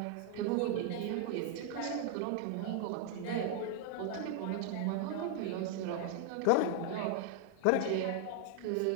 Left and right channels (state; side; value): different; both; correlation 0.00